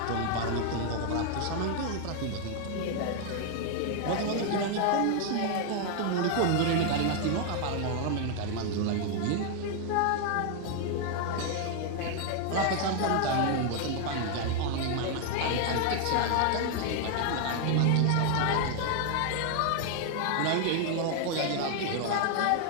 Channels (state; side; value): different; both; correlation 0.00